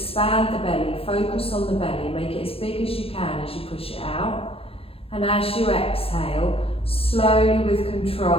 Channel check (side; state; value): right; late; 0.27 ms